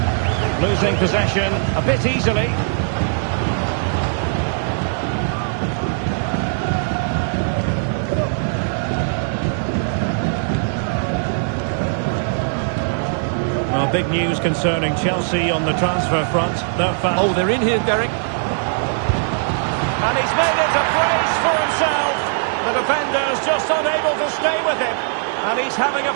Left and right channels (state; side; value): silent; left; digital silence